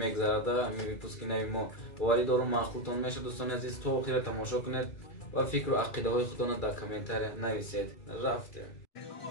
мегзарада. ҳамин випуски нави мо боварӣ дорум маъқултон мешавад. дӯстони азиз, то охира тамошо кунед ва фикру ақидаҳои худтонро дар комментария нависед. рафтем.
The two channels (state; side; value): late; right; 2.3 ms